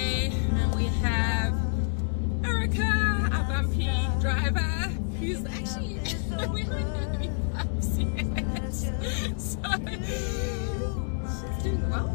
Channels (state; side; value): silent; right; digital silence